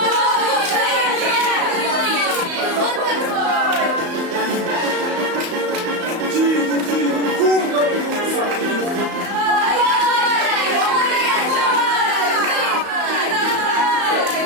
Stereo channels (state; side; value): late; left; 34 ms